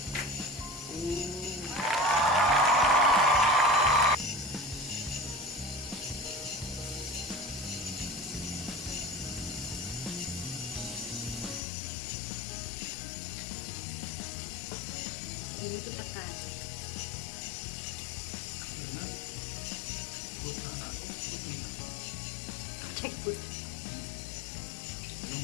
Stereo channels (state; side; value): drops out; right; at 11.6 s